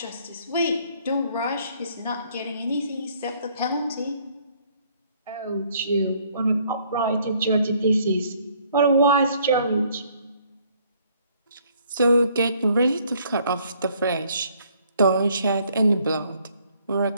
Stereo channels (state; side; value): inverted; both; correlation -0.63